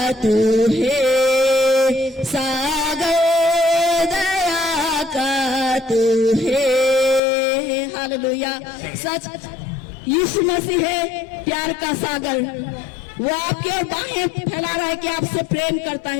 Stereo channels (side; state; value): right; drops out; at 7.2 s